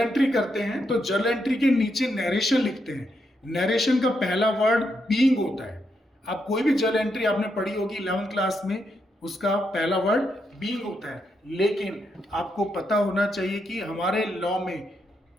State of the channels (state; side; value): normal; both; correlation 0.81